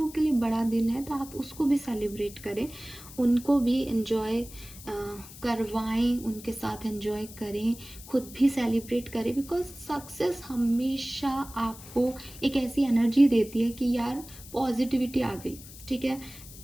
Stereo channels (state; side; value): noise; left; hiss, 17 dB below the sound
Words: के लिए बड़ा दिन है तो आप उसको भी सेलिब्रेट करें, उनको भी एंजॉय करवाएं, उनके साथ एंजॉय करें, खुद भी सेलिब्रेट करें। बिकॉज सक्सेस हमेशा आपको एक ऐसी एनर्जी देती है कि यार पॉजिटिविटी आ गई, ठीक है।